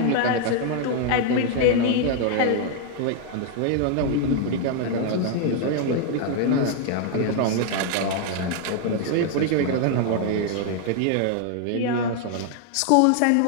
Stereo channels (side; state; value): both; different; correlation 0.00